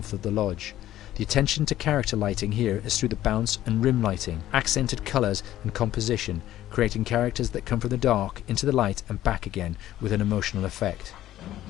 of the lodge. The attention to character lighting here is through the bounce and rim lighting, accented colours and composition, creating characters that come from the dark into the light and back again with an emotional effect.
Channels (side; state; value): right; quieter; 13.4 dB